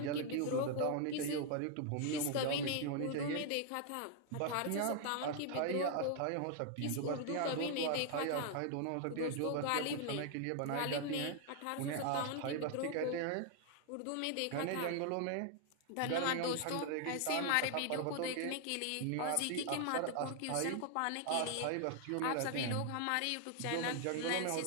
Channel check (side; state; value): both; different; correlation 0.00